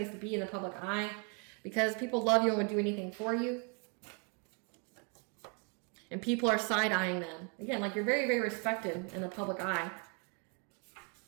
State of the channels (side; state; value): left; quieter; 36.0 dB